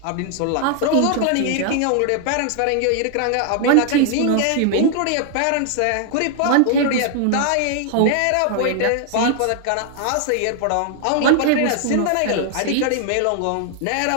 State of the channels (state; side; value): different; both; correlation 0.00